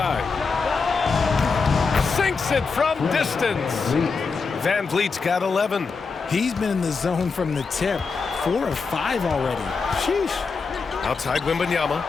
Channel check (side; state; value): right; quieter; 4.8 dB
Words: Sinks it from distance. Van Vliet's got 11. He's been in the zone from the tip. 4 of 5 already. Sheesh. Outside Wembanyama.